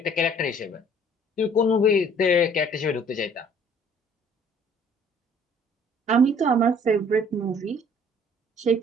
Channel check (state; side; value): normal; both; correlation 0.56